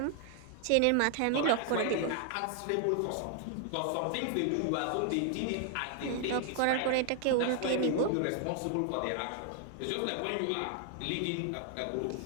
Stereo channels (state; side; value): different; both; correlation 0.00